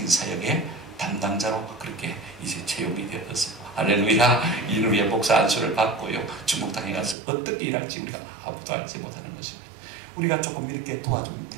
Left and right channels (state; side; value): drops out; left; at 7.2 s